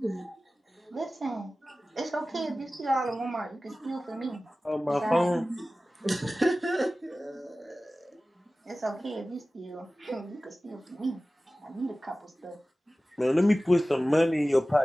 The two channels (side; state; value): both; normal; correlation 0.96